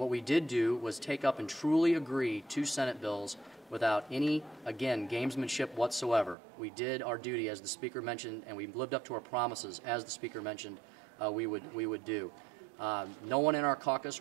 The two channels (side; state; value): left; drops out; at 6.4 s